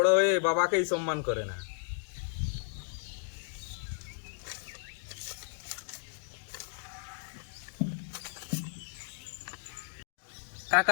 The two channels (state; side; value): silent; right; digital silence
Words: হয়ে বাবাকেই সম্মান করে না।